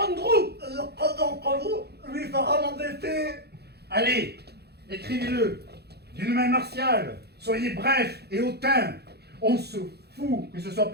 Quand vous lui fera mon défi. Allez, écrivez-le d'une main martiale. Soyez bref et hautain. On se fout que ce soit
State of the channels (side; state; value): left; late; 0.48 ms